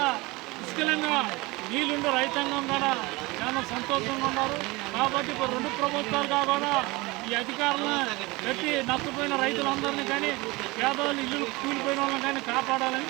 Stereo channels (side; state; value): left; quieter; 23.1 dB